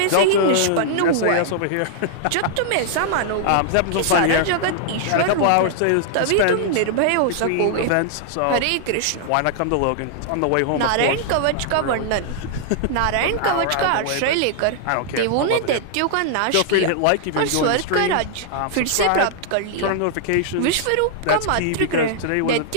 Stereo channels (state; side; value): different; both; correlation -0.01